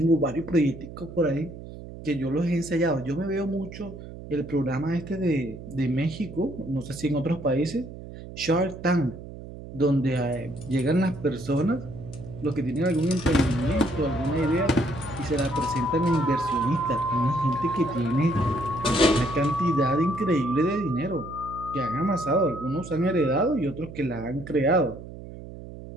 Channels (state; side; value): noise; right; hum, 13 dB below the sound